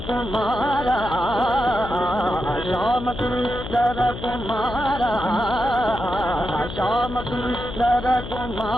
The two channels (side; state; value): left; noise; hum, 9 dB below the sound